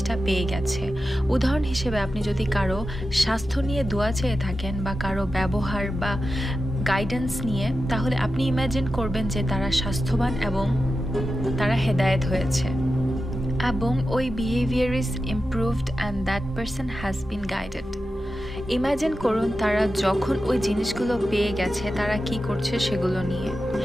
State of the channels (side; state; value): both; normal; correlation 0.92